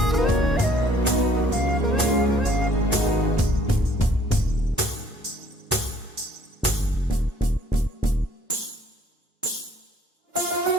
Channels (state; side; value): normal; both; correlation 0.59